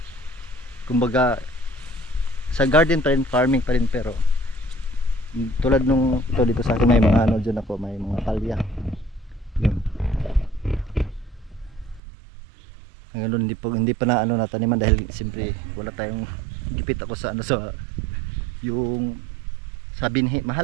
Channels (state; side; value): drops out; left; at 12.0 s